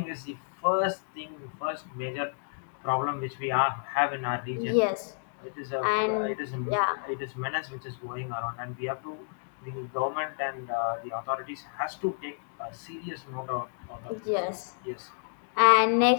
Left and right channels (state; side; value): silent; right; digital silence